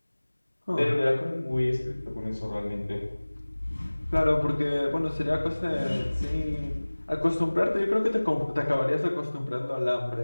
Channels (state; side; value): inverted; both; correlation -1.00